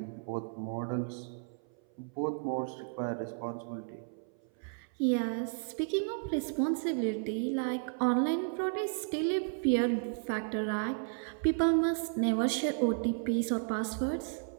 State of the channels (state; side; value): silent; left; 55 dB below the other